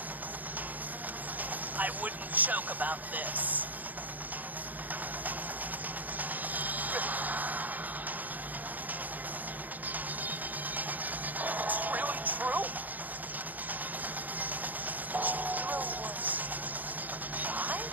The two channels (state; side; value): late; left; 0.082 ms